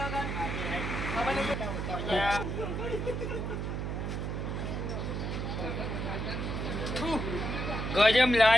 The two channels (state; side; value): noise; right; hum, 2 dB below the sound